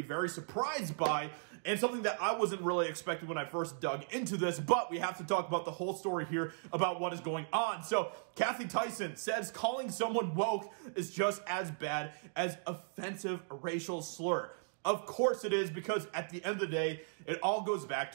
very surprised by, and something that I wasn't really expecting when I first dug into this, but we have to talk about the whole story here about what is going on. So, Kathy Tyson says calling someone woke is just as bad as offensive racial slur. Of course it is, because at the end of the day, it all goes back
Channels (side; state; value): left; silent; digital silence